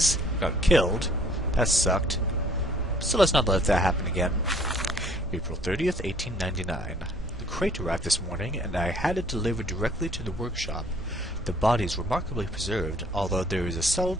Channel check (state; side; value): normal; both; correlation 0.58